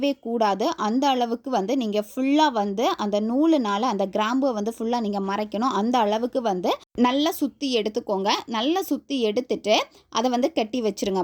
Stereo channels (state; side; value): identical; both; correlation 1.00